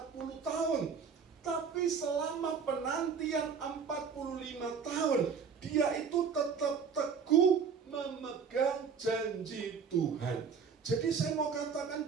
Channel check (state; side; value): quieter; left; 6.1 dB